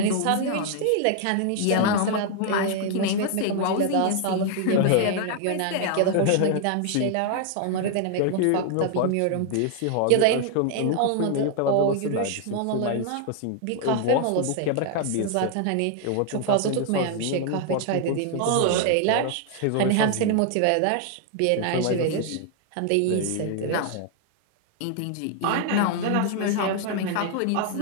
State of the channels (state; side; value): different; both; correlation 0.00